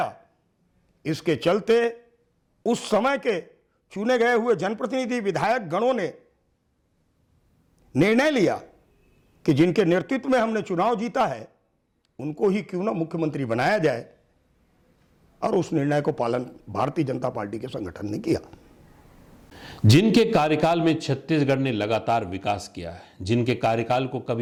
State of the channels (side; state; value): both; identical; correlation 1.00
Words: इसके चलते उस समय के चुने गए हुए जनप्रतिनिधि विधायक गणों ने निर्णय लिया कि जिनके नेतृत्व में हमने चुनाव जीता है उनको ही क्यों ना मुख्यमंत्री बनाया जाए, और उस निर्णय को पालन भारतीय जनता पार्टी के संगठन ने किया। जिनके कार्यकाल में छत्तीसगढ़ ने लगातार विकास किया है, जिनके कार्यकाल को